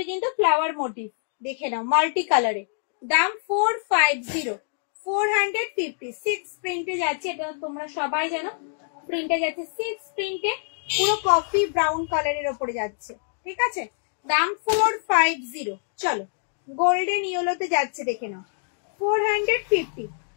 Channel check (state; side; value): silent; right; digital silence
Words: কিন্তু ফ্লাওয়ার মোটিভ, দেখে নাও মাল্টি কালারে। দাম 450, 450। 6 প্রিন্টে যাচ্ছে, এটা তোমরা সবাই জানো, প্রিন্টে যাচ্ছে 6 প্রিন্টে, পুরো কফি ব্রাউন কালারের ওপরে যাচ্ছে, ঠিক আছে। দাম 450। চলো গোল্ডেন ইয়েলোতে যাচ্ছে, দেখে নাও 450।